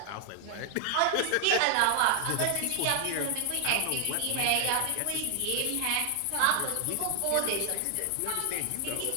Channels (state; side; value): different; both; correlation 0.00